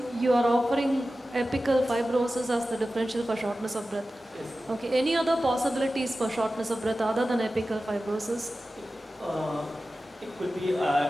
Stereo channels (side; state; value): both; normal; correlation 0.94